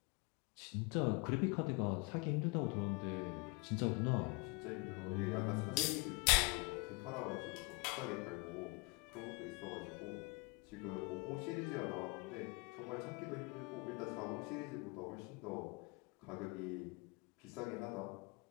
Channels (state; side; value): quieter; right; 28.8 dB